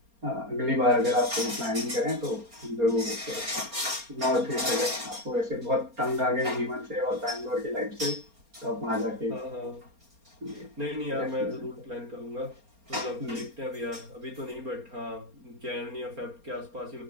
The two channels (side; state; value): left; late; 4.3 ms